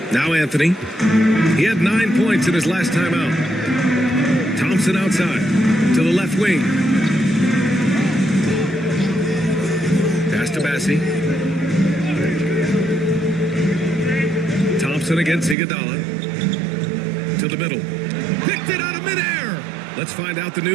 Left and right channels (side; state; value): left; drops out; at 15.6 s